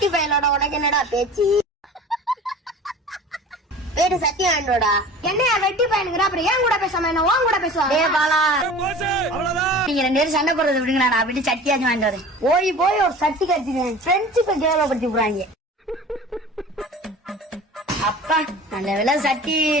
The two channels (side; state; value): both; normal; correlation 0.40